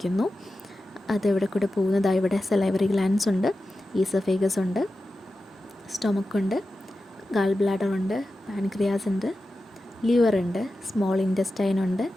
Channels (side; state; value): both; normal; correlation 0.93